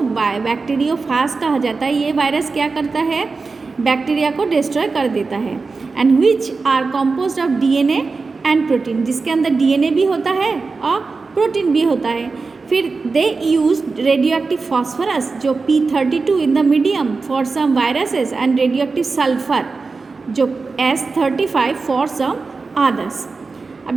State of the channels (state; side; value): quieter; left; 4.2 dB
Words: कहा जाता है। ये वायरस क्या करता है, बैक्टीरिया को डिस्ट्रॉय कर देता है। And which are composed of DNA and protein, जिसके अंदर डीएनए भी होता है और प्रोटीन भी होता है। फिर they use radioactive phosphorus जो P32 in the medium for some viruses and radioactive sulphur जो S35 फॉर सम अदर्स।